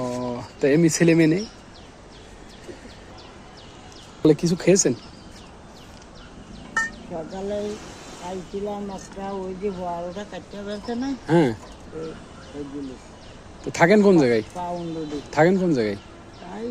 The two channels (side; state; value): both; identical; correlation 1.00